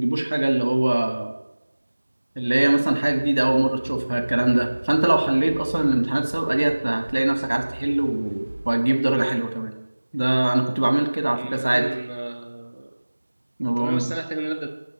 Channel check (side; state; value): both; inverted; correlation -1.00